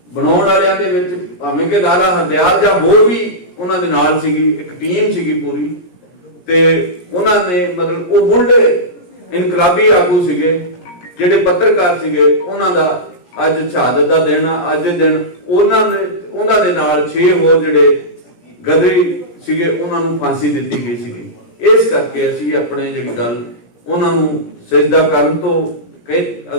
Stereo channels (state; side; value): late; right; 17 ms